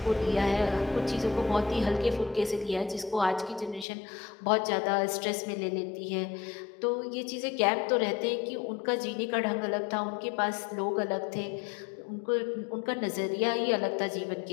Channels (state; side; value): drops out; right; at 3.9 s